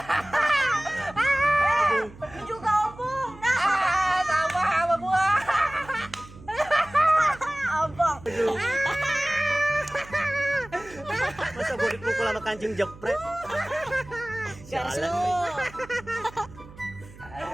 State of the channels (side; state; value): right; noise; hum, 19 dB below the sound